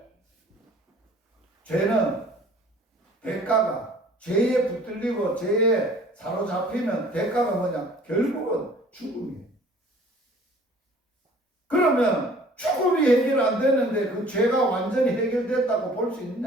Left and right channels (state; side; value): normal; both; correlation 0.52